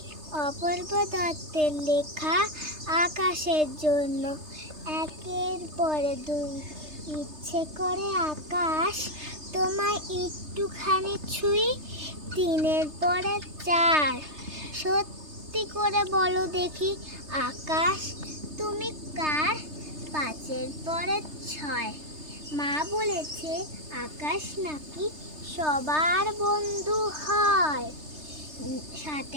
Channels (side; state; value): left; late; 3.3 ms